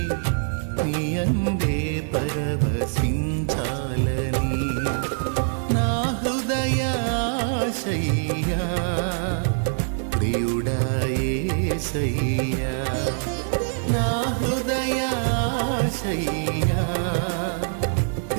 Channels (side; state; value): left; silent; digital silence